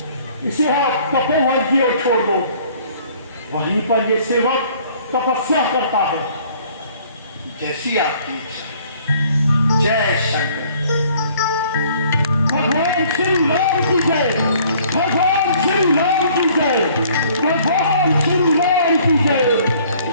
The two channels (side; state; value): both; inverted; correlation -0.57